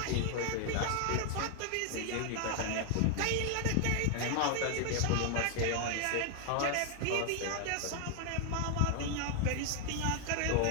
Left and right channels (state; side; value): different; both; correlation 0.00